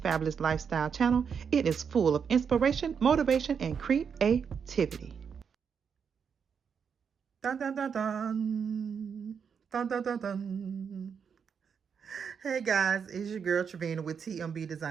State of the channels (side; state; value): left; quieter; 6.7 dB